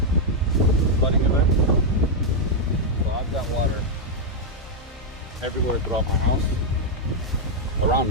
flooding event, so I've got water everywhere throughout my house. Around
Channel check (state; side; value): normal; both; correlation -0.02